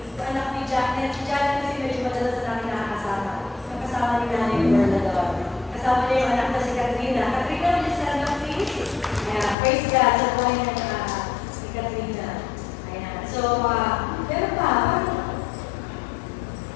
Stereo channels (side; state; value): right; drops out; at 9.6 s